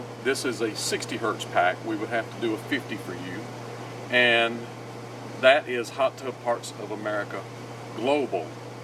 This is a 60 hertz pack. We would have to do a 50 for you. And that is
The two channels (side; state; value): both; identical; correlation 1.00